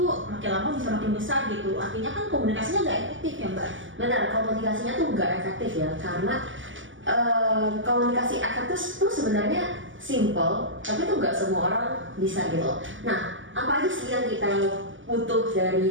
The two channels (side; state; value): left; late; 0.56 ms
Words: makin lama bisa makin besar gitu? Artinya kan komunikasinya nggak efektif ya Mbak? Benar, komunikasinya tuh nggak efektif ya, karena komunikasi efektif tuh sebenarnya simple, tapi tuh nggak semua orang bisa gitu. Nah, apa aja sih yang kita butuh